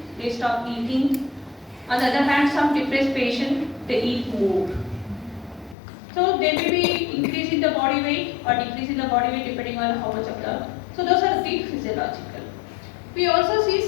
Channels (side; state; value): right; drops out; at 5.8 s